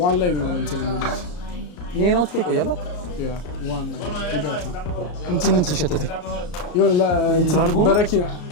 ዋን ላይ ነው እንትን ይሄ ነው ትቆ ይቆያል ያ ዋን ላይ ይጋታ እንትን ተሸተተ ይወላ በረኪና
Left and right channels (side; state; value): right; late; 34 ms